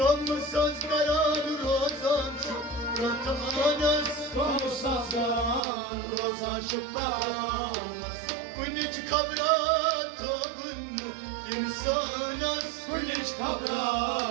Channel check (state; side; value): drops out; left; at 5.6 s